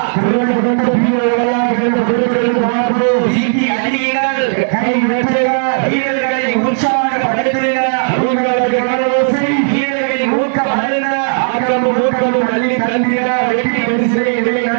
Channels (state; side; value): silent; left; digital silence